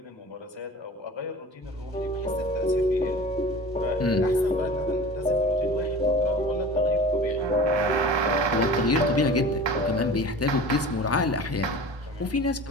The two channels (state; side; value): normal; both; correlation 0.39